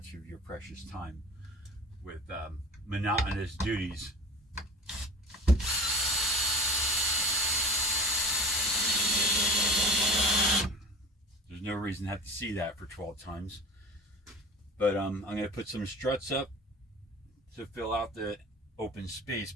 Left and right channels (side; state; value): both; normal; correlation 0.38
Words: of your precious time with monotonous duties. There's no reason to have to see that for 12 times. But I'm going to put some struts up to fill out the open space